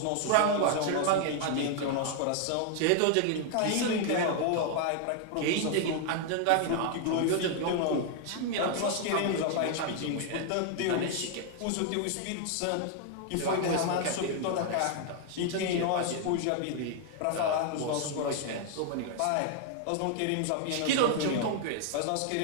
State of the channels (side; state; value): both; different; correlation 0.00